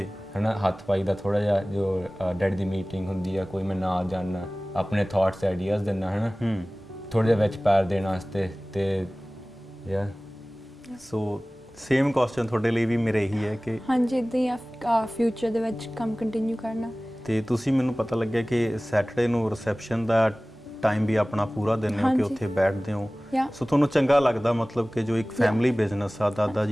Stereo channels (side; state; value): both; normal; correlation 0.98